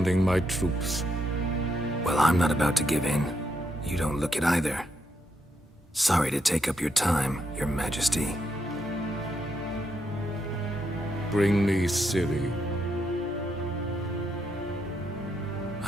my troops. Well, I'm not about to give in. You don't look it either. Sorry to take up your time, Your Majesty. Bring me Ciri.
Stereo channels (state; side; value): normal; both; correlation 0.79